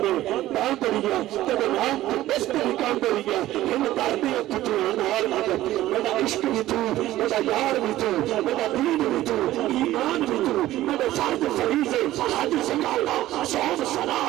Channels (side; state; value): left; quieter; 15.0 dB